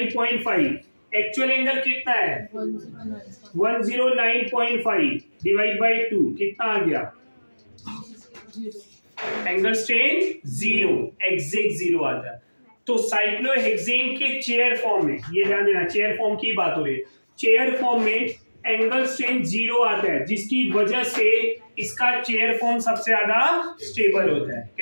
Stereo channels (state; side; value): inverted; both; correlation -1.00